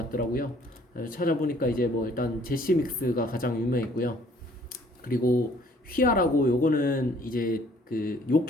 찾아보니까 이제 뭐 일단 제시믹스가 가장 유명했고요. 그리고 휘하라고 요거는 이제 그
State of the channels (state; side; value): normal; both; correlation 0.59